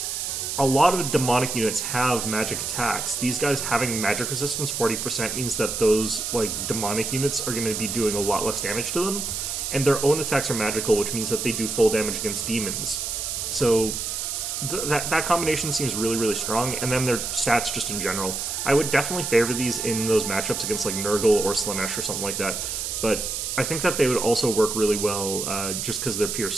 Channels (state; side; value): noise; right; hiss, 3 dB below the sound